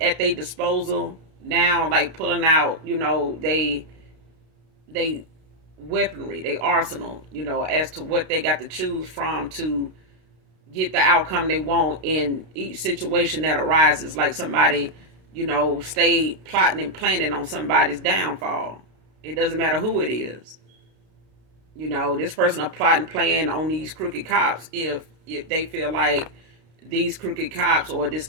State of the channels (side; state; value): left; late; 32 ms